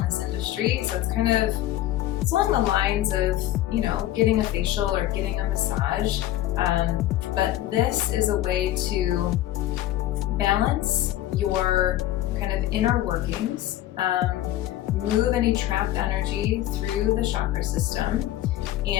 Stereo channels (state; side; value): quieter; right; 14.0 dB